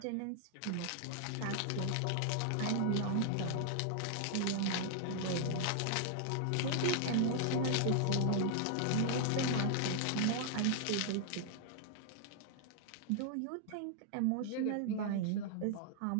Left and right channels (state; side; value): different; both; correlation 0.00